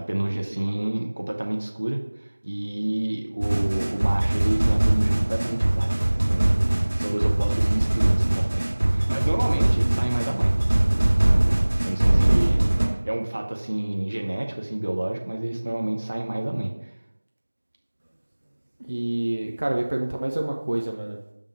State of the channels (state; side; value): inverted; both; correlation -1.00